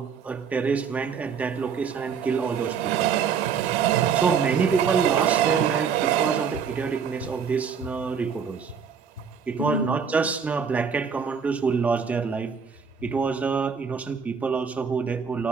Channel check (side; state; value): left; quieter; 6.5 dB